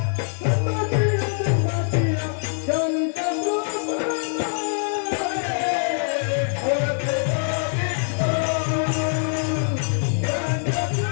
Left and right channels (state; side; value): silent; right; digital silence